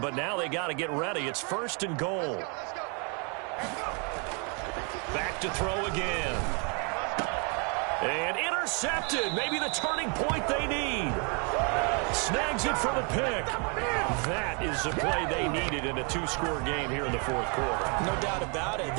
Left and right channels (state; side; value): quieter; left; 35.5 dB